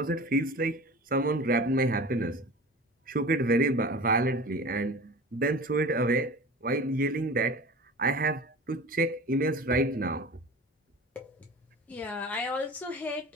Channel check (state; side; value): normal; both; correlation 0.36